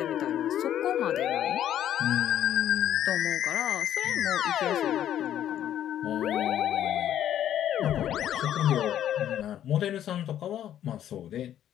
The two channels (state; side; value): quieter; right; 11.0 dB